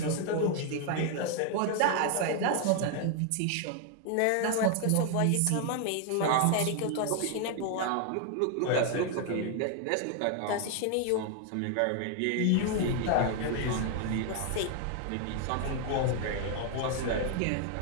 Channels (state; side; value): different; both; correlation 0.00